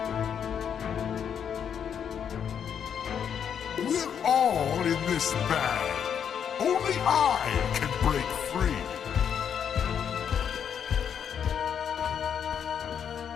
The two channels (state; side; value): quieter; right; 8.1 dB